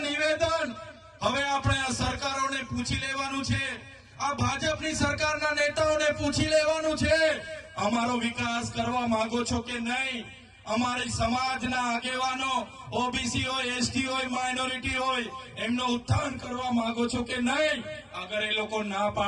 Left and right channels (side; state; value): both; identical; correlation 1.00